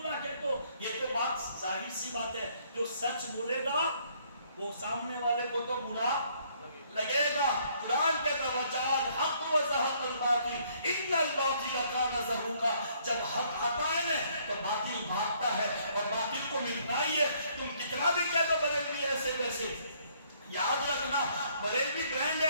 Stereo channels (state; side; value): inverted; both; correlation -0.65